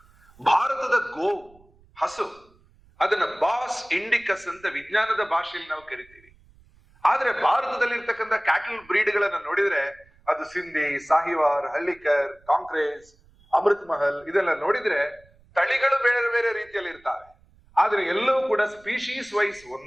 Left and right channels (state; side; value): noise; right; rumble, 29 dB below the sound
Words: ಭಾರತದ ಗೋವು, ಹಸು, ಅದನ್ನ ಬಾಸ್ ಇಂಡಿಕಸ್ ಅಂತ ವಿಜ್ಞಾನದ ಭಾಷೆಯಲ್ಲಿ ನಾವು ಕರಿತೀವಿ. ಆದ್ರೆ ಭಾರತದಲ್ಲಿ ಇರ್ತಕ್ಕಂಥ ಕ್ಯಾಟಲ್ ಬ್ರೀಡ್ಗಳನ್ನ ನೋಡಿದ್ರೆ ಅದು ಸಿಂಧಿ, ಸಾಹಿವಾರ್, ಹಳ್ಳಿಕರ್, ಕಾಂಕ್ರೇಜ್, ಅಮೃತ್ ಮಹಲ್, ಇದೆಲ್ಲ ನೋಡಿದ್ರೆ ತಳಿಗಳು ಬೇರೆ ಬೇರೆ ರೀತಿಯಲ್ಲಿ ಇರ್ತಾವೆ. ಆದ್ರೆ ಎಲ್ಲವೂ ಕೂಡ ಸ್ಪೀಶೀಸ್ ವೈಸ್